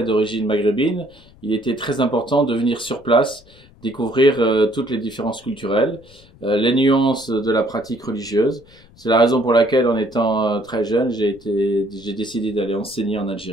d'origine maghrébine, il était très important de venir sur place, découvrir toutes les différences culturelles, les nuances de la pratique religieuse. C'est la raison pour laquelle, en étant très jeune, j'ai décidé d'aller enseigner en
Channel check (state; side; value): noise; left; rumble, 26 dB below the sound